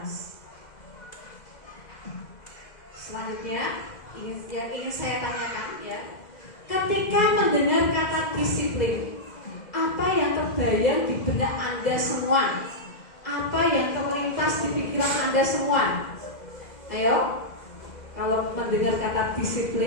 Selanjutnya yang ingin saya tanyakan ya, ketika mendengar kata disiplin, apa yang terbayang di benak Anda semua? Apa yang terlintas di pikiran Anda semua? Ayo, kalau mendengar kata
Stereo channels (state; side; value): late; right; 2.0 ms